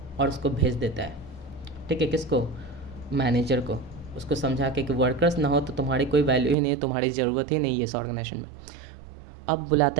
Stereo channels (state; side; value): drops out; left; at 6.6 s